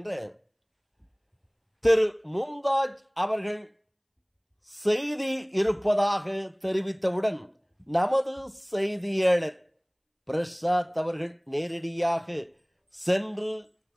திரு மும்தாஜ் அவர்கள் செய்தி இருப்பதாக தெரிவித்தவுடன் நமது செய்தியாளர் பிரசாத் அவர்கள் நேரடியாக சென்று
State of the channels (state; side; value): identical; both; correlation 1.00